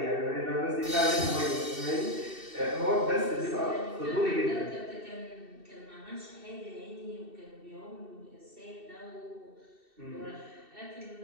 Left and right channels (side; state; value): left; late; 2.7 ms